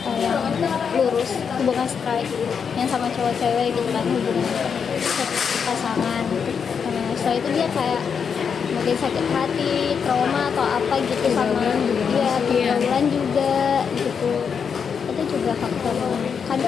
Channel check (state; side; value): quieter; right; 6.6 dB